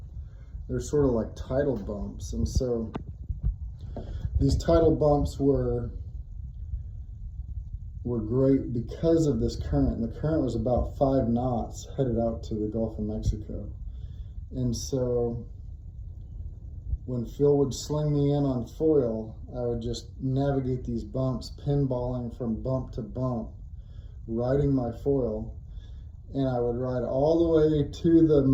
They're sort of like tidal bumps. And so these tidal bumps were were great because of this current. And the current was about 5 knots headed out to the Gulf of Mexico. And so when Phil would sling me in on foil, I would just navigate these bumps, pinballing from bump to bump, riding my foil. And I would ride all the way to the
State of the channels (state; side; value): identical; both; correlation 1.00